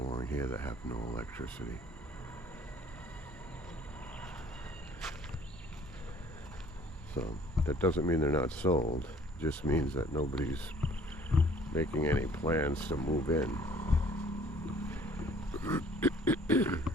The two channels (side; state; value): both; normal; correlation 0.55